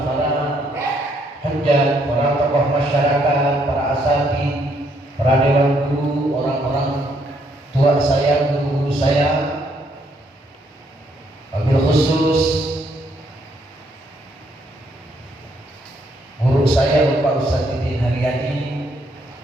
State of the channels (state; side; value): normal; both; correlation 0.71